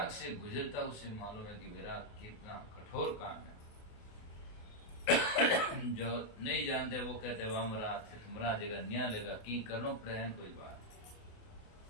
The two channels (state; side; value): late; right; 28 ms